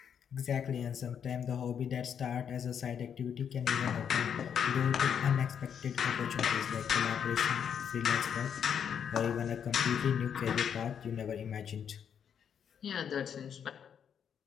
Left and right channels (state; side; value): quieter; right; 8.0 dB